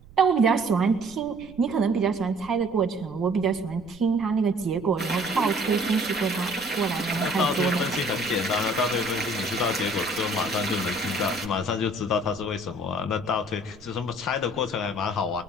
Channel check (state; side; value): noise; right; rumble, 22 dB below the sound